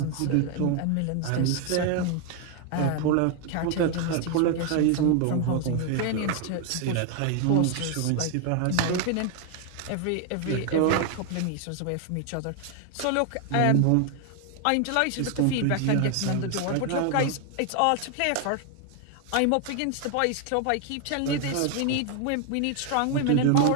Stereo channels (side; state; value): both; different; correlation 0.01